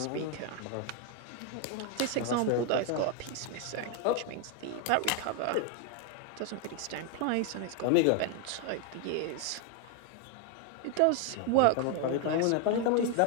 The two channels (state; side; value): different; both; correlation 0.01